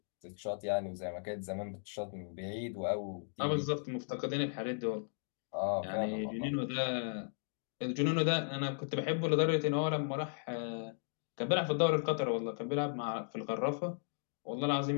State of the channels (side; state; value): right; silent; digital silence